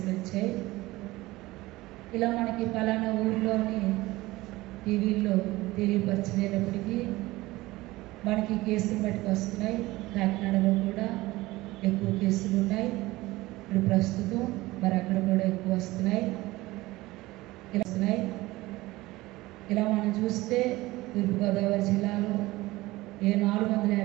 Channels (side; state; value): left; quieter; 19.2 dB